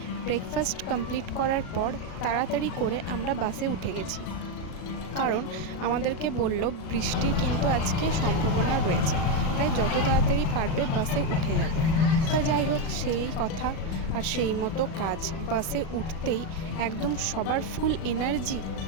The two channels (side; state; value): right; late; 37 ms